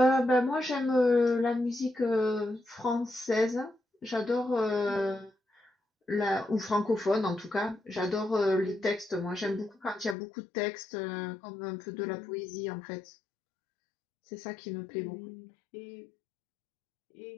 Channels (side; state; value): right; drops out; at 10.2 s